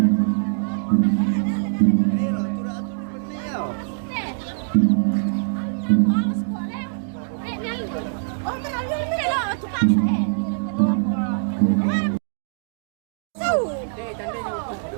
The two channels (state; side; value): silent; left; digital silence